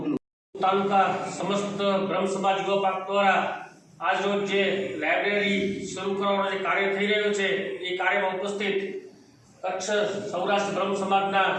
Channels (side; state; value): both; identical; correlation 1.00